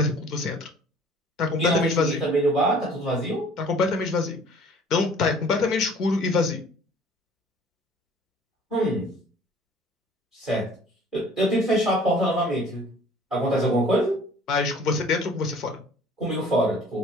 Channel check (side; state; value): both; normal; correlation 0.51